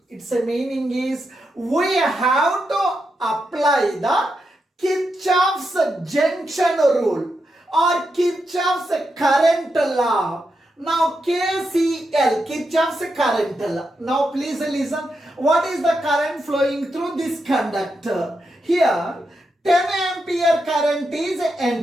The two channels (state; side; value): normal; both; correlation 0.85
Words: Its meaning is we have to apply the Kirchhoff's junction rule or Kirchhoff's current law. Now KCL, Kirchhoff's current law. Now please listen. What is the current flowing through this conductor? Here 10 ampere current is